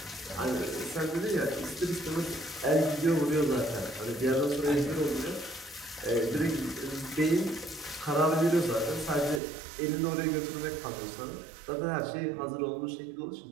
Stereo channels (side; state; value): left; drops out; at 9.4 s